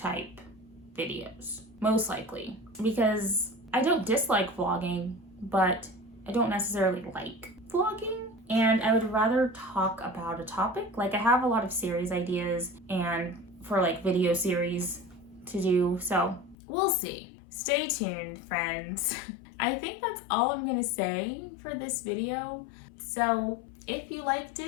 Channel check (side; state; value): right; drops out; at 16.6 s